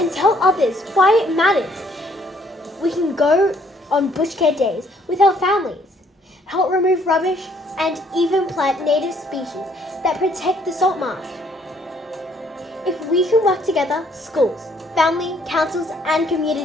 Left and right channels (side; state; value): both; normal; correlation 0.65